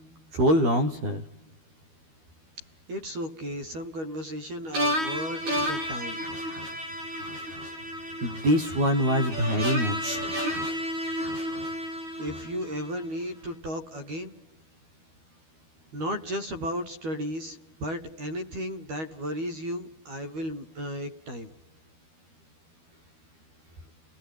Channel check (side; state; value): left; late; 12 ms